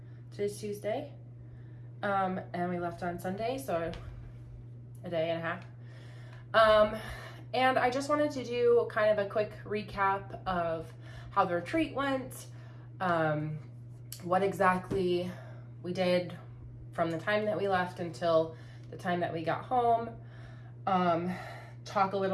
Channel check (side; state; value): both; identical; correlation 1.00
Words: Today's Tuesday. And we left on Sunday, so a day and a half. And I just wanted to do kind of a quick recap of how the retreat went, what exactly we did from the time that we left until the time that we got home, talk a